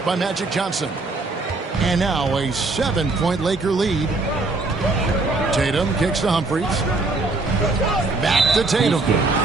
by Magic Johnson. And now a 7-point Laker lead. Tatum kicks to Humphries. Back to Tatum.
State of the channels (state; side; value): quieter; left; 3.4 dB